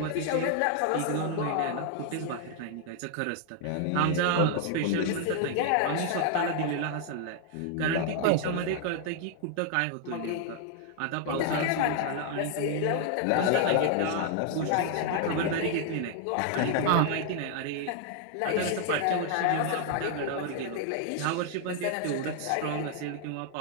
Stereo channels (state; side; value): different; both; correlation 0.00